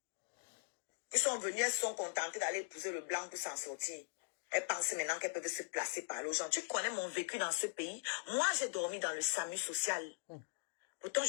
qui sont venus, elles sont contentées d'aller épouser le blanc pour s'en sortir. Elles pensent maintenant qu'elles peuvent se placer par là aux gens. Tu connais mon vécu dans ce pays. Moi, j'ai dormi dans le SAMU social. Pourtant,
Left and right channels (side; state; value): right; silent; digital silence